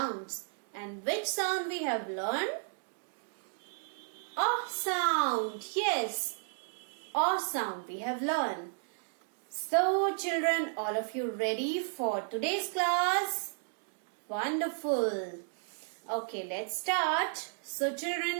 And which sound we have learned? A sound. Yes, A sound we have learned. So children, all of you ready for today's class? Wonderful. Okay, let's start. So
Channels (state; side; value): silent; left; digital silence